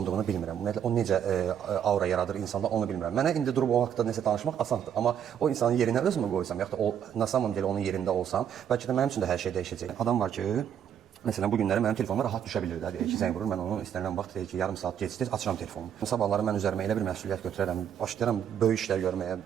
bilmirəm. Ümumiyyətlə o necə aura yaradır insanda onu bilmirəm. Mənə indi durub o haqqda nəsə danışmaq asandır. Amma o insanın yerinə özümü qoysam, yaxud da o na samом деле onun yerində olsam, bəlkə də mənim üçün də hər şey dəyişəcək. Adam var ki, məsələn, bu günləri mənim telefonuma rahat düşə bilir də. Deyir ki, zəng vurur, mən onu istənilən vaxt deyir ki, yarım saat gecikdir, açıram telefonumu. Sabahları mən üzərimə elə bir məsuliyyət götürərəm, başlayıram böyük işlər görməyə,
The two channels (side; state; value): left; quieter; 9.0 dB